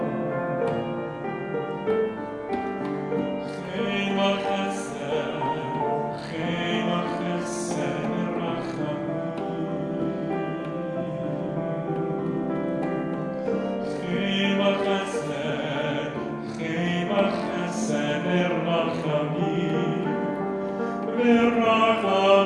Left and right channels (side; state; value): both; identical; correlation 1.00